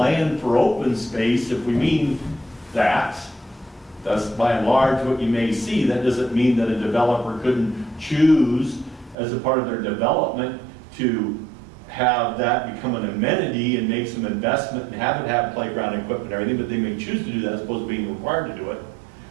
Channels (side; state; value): left; drops out; at 9.2 s